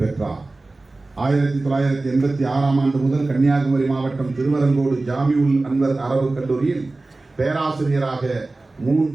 பெற்றார். 1986 ஆண்டு முதல் கன்னியாகுமரி மாவட்டம் திருவரங்கோடு ஜாமிஉல் அன்வர் அரபு கல்லூரியில் பேராசிரியராக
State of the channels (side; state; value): left; quieter; 3.2 dB